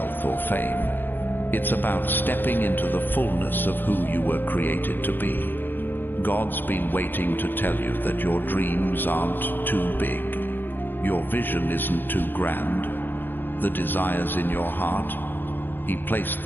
or fame. It's about stepping into the fullness of who you were created to be. God's been waiting to tell you that your dreams aren't too big. Your vision isn't too grand. The desires in your heart, he placed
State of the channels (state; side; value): late; right; 0.095 ms